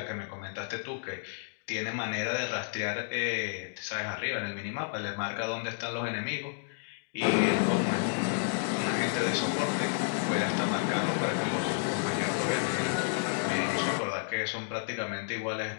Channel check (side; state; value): right; silent; digital silence